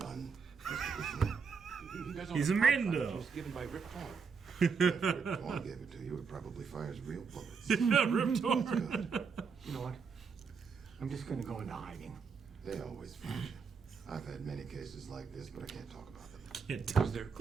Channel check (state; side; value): quieter; left; 5.6 dB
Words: He's a Mando. It was given by Rip Torn. If Rip Torn gave it to you, it probably fires real bullets. Rip Torn. Good. You know what? I'm just gonna go into hiding. They always find you. I've had many cases like this, but I can't talk about them. Because they're